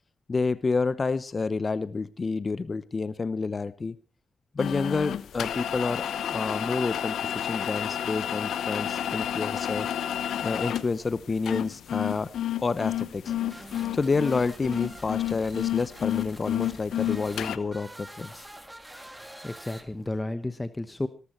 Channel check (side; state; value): right; quieter; 5.3 dB